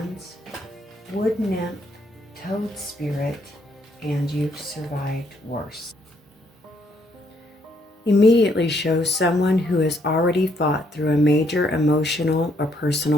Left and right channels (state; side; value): normal; both; correlation 0.71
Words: Wood Nymph, Toad Spirit, and You've Survived Worse. Immediately shows someone who has already fought through a major emotional or